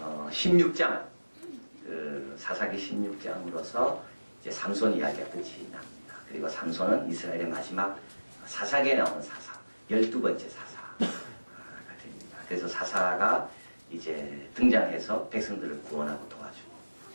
16장 사사기 16장으로서 이제 삼손 이야기가 끝이 납니다. 그리고 삼손은 이스라엘의 마지막 사사기에 나오는 사사, 12번째 사사가 됩니다. 그래서 사사가 이제 등장해서 백성들을 구원하고 도와주고,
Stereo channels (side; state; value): both; inverted; correlation -1.00